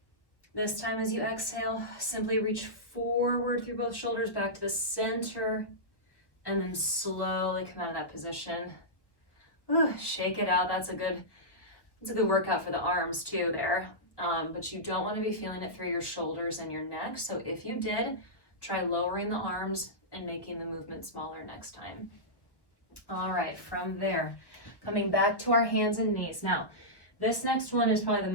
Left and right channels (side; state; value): right; late; 1.1 ms